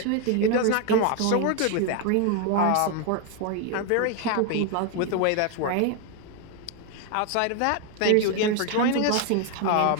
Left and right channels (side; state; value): both; different; correlation 0.01